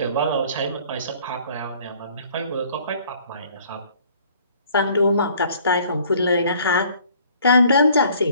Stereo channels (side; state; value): both; inverted; correlation -0.56